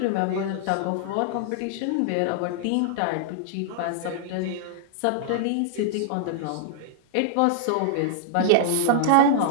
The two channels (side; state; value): both; different; correlation -0.01